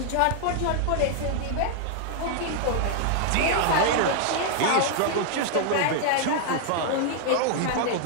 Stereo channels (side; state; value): both; different; correlation 0.00